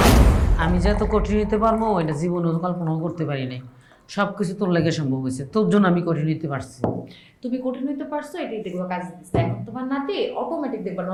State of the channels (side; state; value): both; identical; correlation 1.00